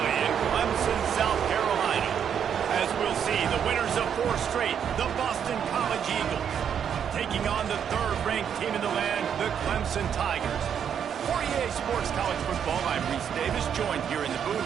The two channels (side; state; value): left; quieter; 8.2 dB